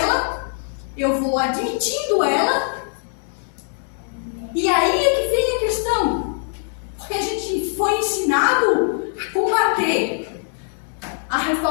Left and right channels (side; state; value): right; silent; 61 dB below the other